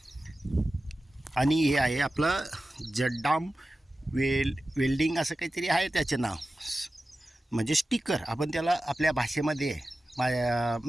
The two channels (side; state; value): both; normal; correlation 0.94